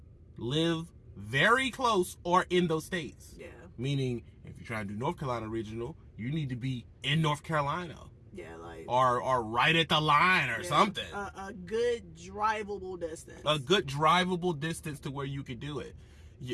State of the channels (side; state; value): both; identical; correlation 1.00